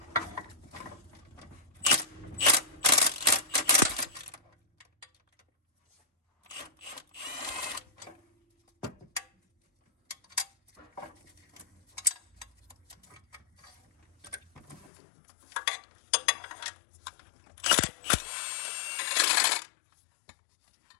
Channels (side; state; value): right; drops out; at 14.9 s